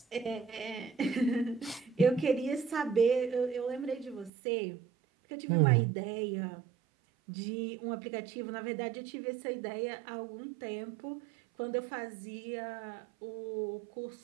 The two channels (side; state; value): left; drops out; at 4.3 s